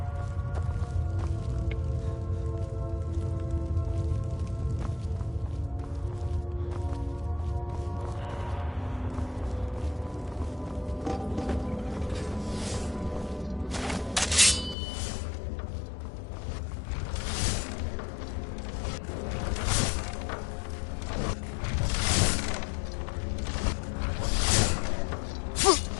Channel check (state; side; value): drops out; right; at 14.8 s